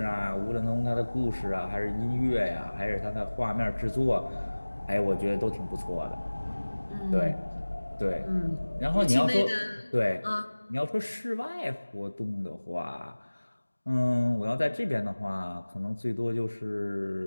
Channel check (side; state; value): both; inverted; correlation -1.00